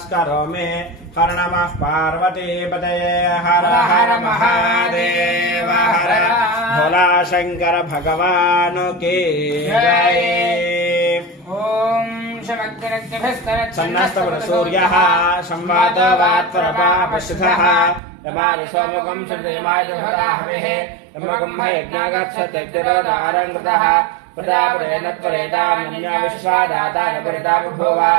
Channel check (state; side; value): drops out; left; at 18.0 s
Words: हर नमः पार्वतीपतये हर हर महादेव हर भोला शंकर भगवान की जय। ओम सन्नस्तसूर्यः संवादवात्परपापश्रुतः यमाय सोमकं श्रीदेवाय हविः यमकं यज्ञागच्छत्यग्निरोदारङ्कृतः प्रजापतेनत्वरेतान्य विश्वादाताय परिता बभूव